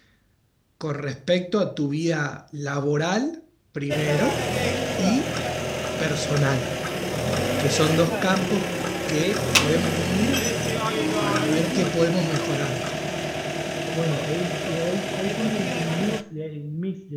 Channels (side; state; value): both; identical; correlation 1.00